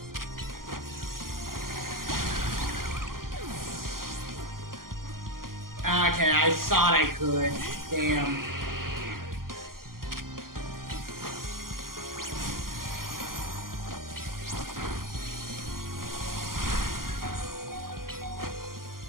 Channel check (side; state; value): left; late; 0.92 ms